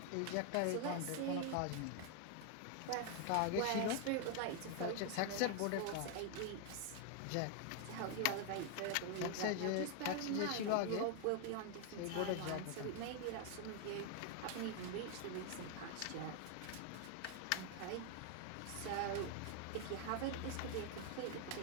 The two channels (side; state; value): both; different; correlation 0.00